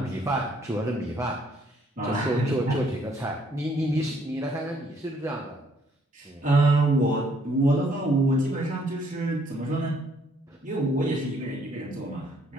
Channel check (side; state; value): both; normal; correlation 0.66